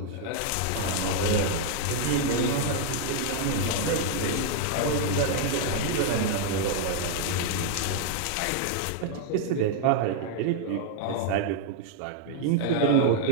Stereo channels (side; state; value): both; different; correlation 0.00